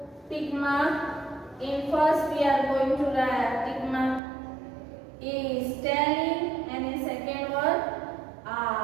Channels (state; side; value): drops out; left; at 4.2 s